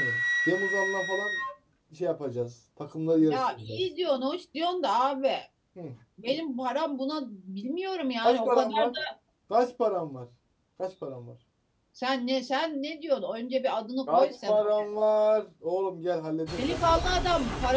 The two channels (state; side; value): identical; both; correlation 1.00